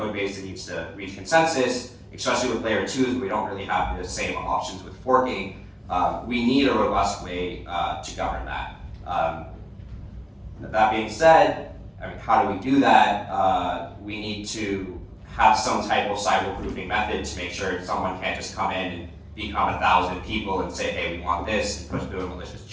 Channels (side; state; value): both; identical; correlation 1.00